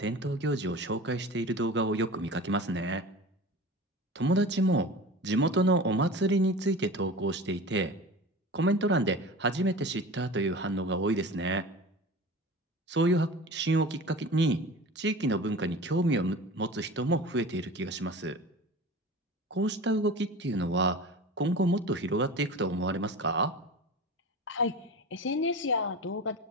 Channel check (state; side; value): normal; both; correlation 0.35